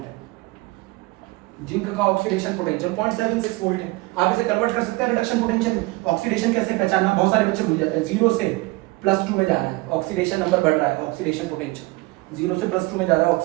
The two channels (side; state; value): left; quieter; 22.4 dB